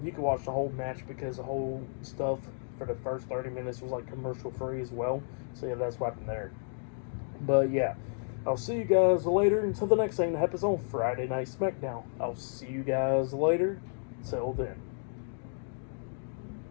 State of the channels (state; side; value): silent; right; digital silence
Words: you can watch the whole match because the whole stuff for the first 30 minutes was commercial free as well. So yeah, that's what happened there. But yeah, I'll see you guys later until the next thing that happens on Friday Night SmackDown. I'll see you guys later. Till then.